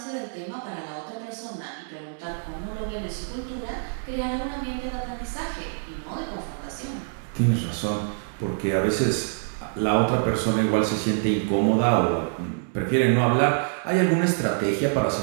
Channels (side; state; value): left; silent; digital silence